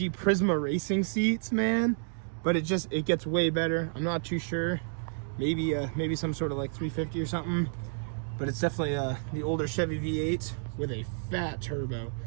Prisma racing seats, man, but it gets way better. I'm not too sure. Maybe some sort of like 350 or something, but it's definitely the older Chevy V8 with a fat turbo.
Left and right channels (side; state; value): left; silent; digital silence